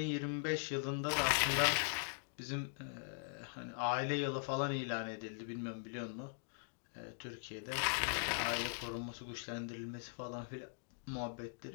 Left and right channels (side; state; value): right; silent; digital silence